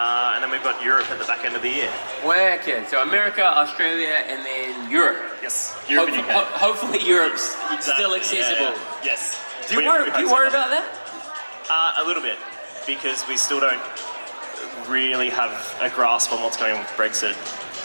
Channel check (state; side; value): inverted; both; correlation -1.00